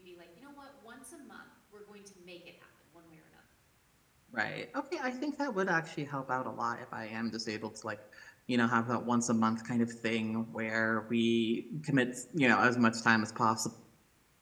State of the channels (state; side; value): identical; both; correlation 1.00